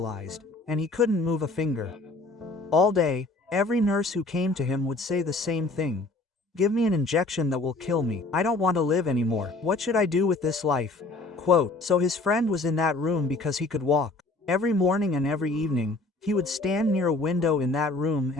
and he couldn't move a finger. All day, every nurse who came to him would say the same thing. "Give me an injection that will kill me. I don't want to live anymore. What should I do with this life?" Quote. So his friend was in that room because he could walk. Every morning and every evening, he would stand near a window in that room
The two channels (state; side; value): quieter; right; 3.2 dB